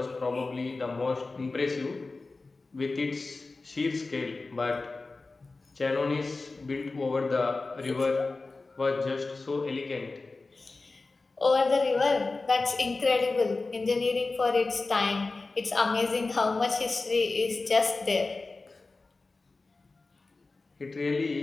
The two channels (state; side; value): quieter; right; 3.6 dB